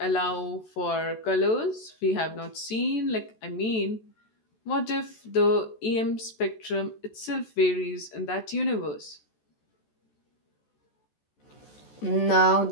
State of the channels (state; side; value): late; right; 14 ms